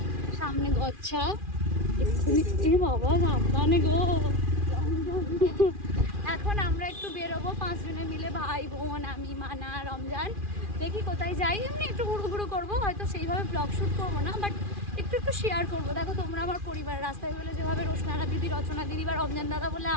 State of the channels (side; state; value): left; late; 2.4 ms